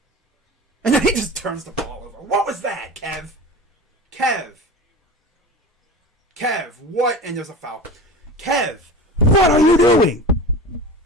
And then he just turns the ball over. What was that, Kev? Kev, what? And there's a foul. Kev, what are you doing?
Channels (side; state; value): both; normal; correlation 0.33